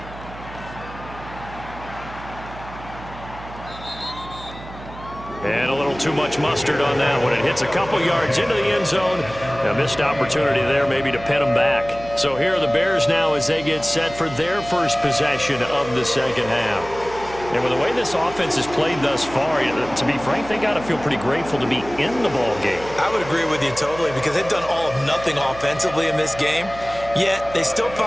And a little too much mustard on that one. It hits a couple yards into the end zone. A missed opportunity there maybe to pin them back. So here are the Bears now as they get set for their first possession of the 2nd half. And with the way this offense has played thus far, to be frank, they got to feel pretty grateful to be in the ball game. I would agree with you totally because they've done all of nothing offensively in this game, yet they still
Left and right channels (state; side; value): noise; right; hum, 15 dB below the sound